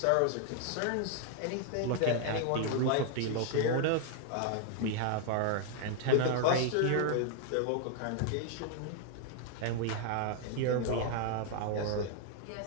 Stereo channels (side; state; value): both; different; correlation 0.00